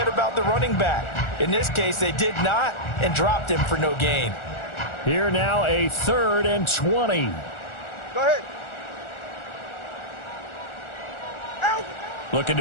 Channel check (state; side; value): late; right; 1.4 ms